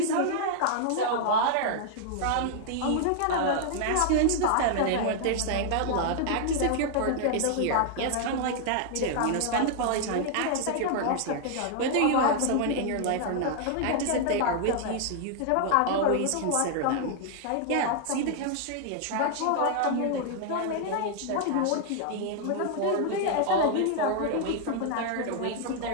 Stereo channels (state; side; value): different; both; correlation 0.00